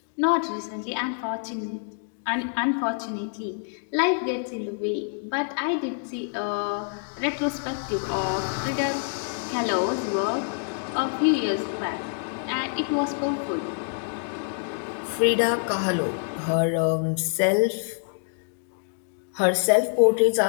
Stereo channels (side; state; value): right; silent; digital silence